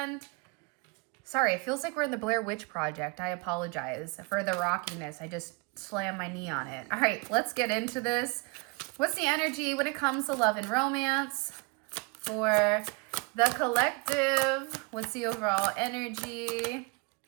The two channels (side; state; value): left; quieter; 29.3 dB